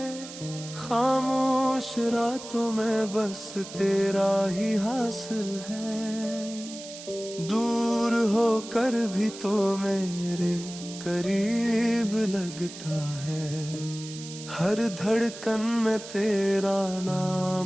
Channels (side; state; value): right; noise; hiss, 13 dB below the sound